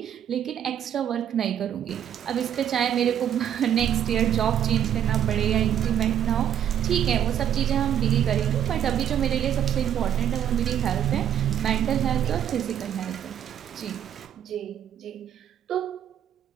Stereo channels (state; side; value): quieter; left; 9.9 dB